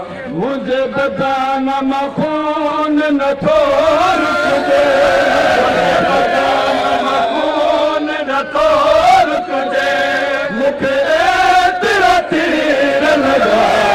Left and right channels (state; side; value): identical; both; correlation 1.00